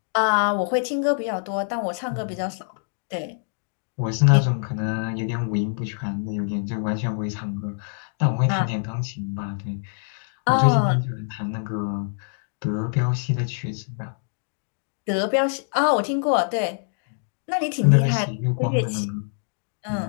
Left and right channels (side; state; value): right; silent; 62 dB below the other